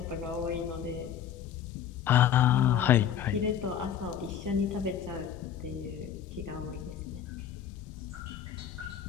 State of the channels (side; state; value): right; quieter; 9.2 dB